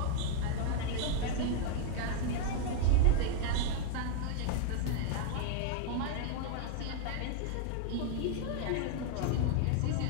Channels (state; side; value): different; both; correlation 0.00